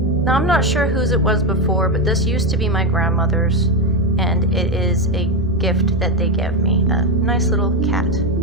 Now I'm not sure whose it was before, but this used to be my grandmother's, and it is a gift that they gave me. A nice little cat.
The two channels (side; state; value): both; normal; correlation 0.10